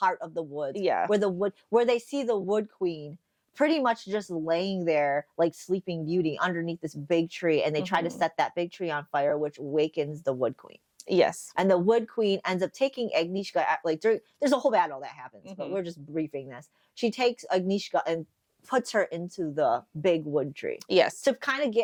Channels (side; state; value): both; identical; correlation 1.00